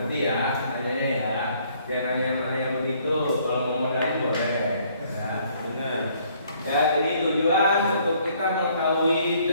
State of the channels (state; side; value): inverted; both; correlation -0.63